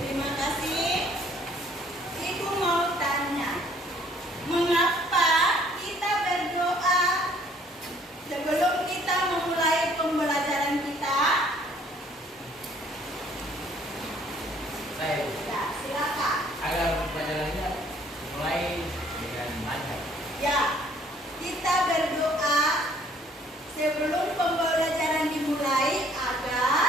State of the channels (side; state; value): both; normal; correlation 0.60